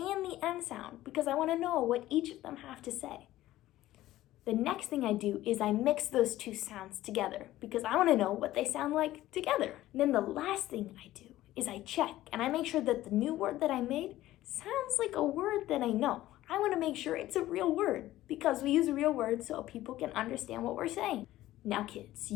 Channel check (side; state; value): right; quieter; 15.2 dB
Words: the end sound, because I want to know what each of them have to say. The next thing I do is I mix those two sounds together, because I want to know what they sound like together. And then the last thing I do is I check, and I make sure that the new word that I made sounds like a word that I know. I want to make sure it's a real word, because we use real words so people can understand what we're saying. Now, kids,